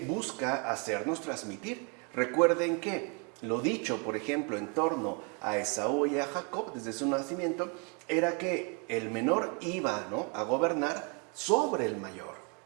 busca hacernos transmitir. Recuerden que lo dicho, por ejemplo, en torno a Esaú y a Jacob desde su nacimiento, era que el menor iba, ¿no?, a gobernar sobre el mayor.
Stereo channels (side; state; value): left; quieter; 35.2 dB